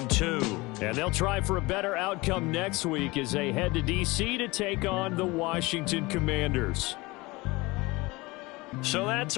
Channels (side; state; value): right; quieter; 22.8 dB